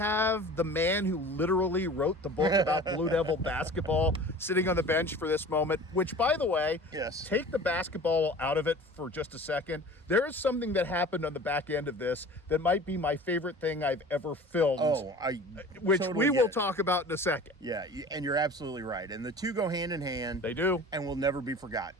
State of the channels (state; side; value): normal; both; correlation 0.41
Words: the man who literally wrote the book about Blue Devil basketball sitting on the bench for this moment? Which, by the way, yes, take the basketball out of it for just a second. There is something that happened on the back end of this that might be my favorite thing I've ever filmed. Which totally we will talk about in a second. Yeah, and you're absolutely right. And the two go hand in hand. They do. And will never be